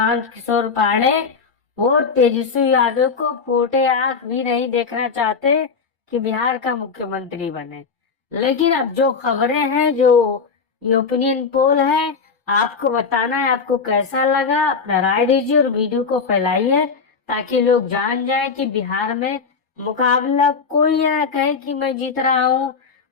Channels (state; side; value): quieter; right; 5.3 dB